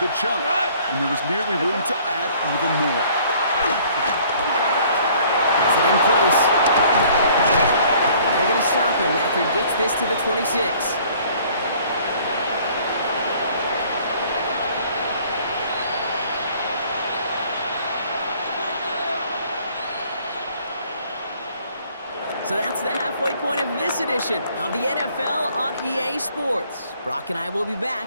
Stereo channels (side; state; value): both; inverted; correlation -0.57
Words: chunk, and there was nearly room to add even more. Has it in close. And they're going to stop him after he gets this to the 26. So that's the halfway point of this edition of the NFL on EA Sports. Brock and I will be back